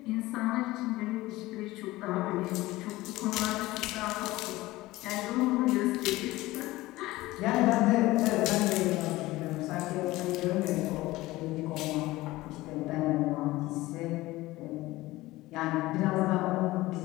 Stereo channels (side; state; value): right; quieter; 18.5 dB